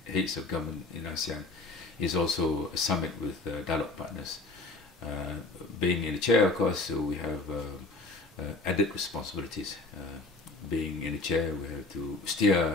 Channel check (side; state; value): right; quieter; 3.3 dB